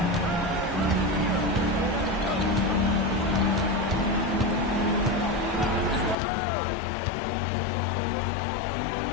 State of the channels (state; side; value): drops out; right; at 6.2 s